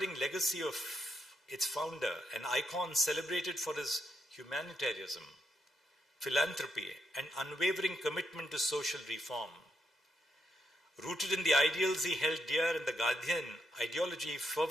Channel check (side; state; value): both; normal; correlation 0.80